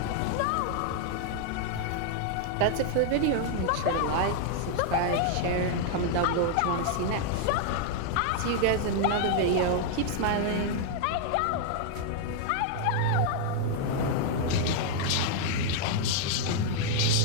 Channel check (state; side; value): different; both; correlation 0.00